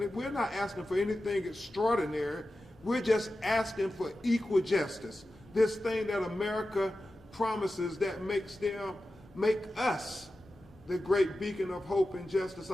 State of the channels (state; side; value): normal; both; correlation 0.93